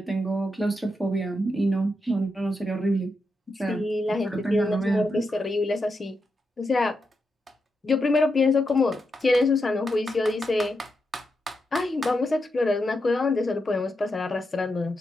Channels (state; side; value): normal; both; correlation 0.85